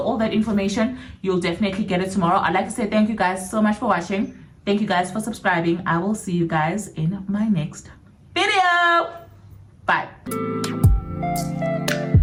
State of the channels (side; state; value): both; identical; correlation 1.00